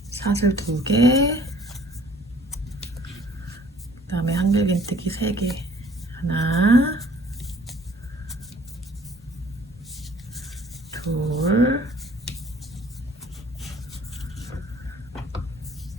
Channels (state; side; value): normal; both; correlation 0.54